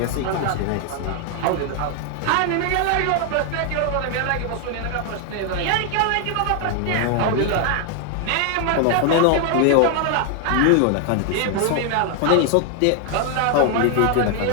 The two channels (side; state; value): both; different; correlation 0.00